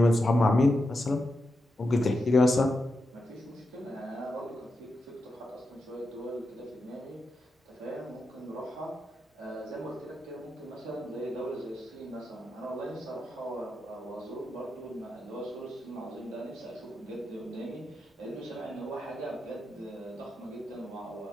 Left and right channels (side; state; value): both; normal; correlation 0.87